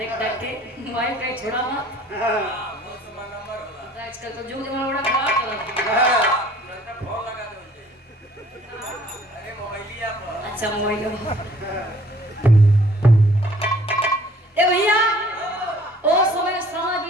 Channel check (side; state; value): both; normal; correlation 0.56